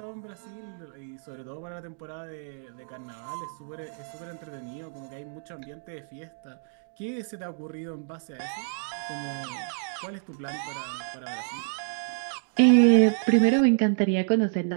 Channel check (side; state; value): left; silent; digital silence